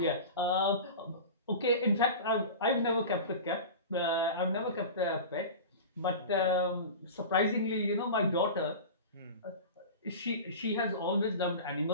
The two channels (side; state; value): both; inverted; correlation -0.31